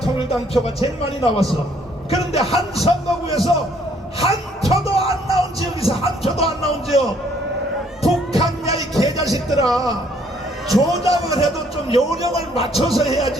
표가 제일 많이 나왔어. 그런데 한 선거구에서 한 표도 안 나온 지역이 있어. 한 표도 안 나온 지역. 북한야 이 개자식들아, 조작을 해도 좀 요령을 맞춰서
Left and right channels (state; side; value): normal; both; correlation 0.64